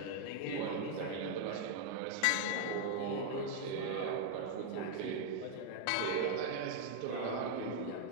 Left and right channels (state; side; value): different; both; correlation 0.00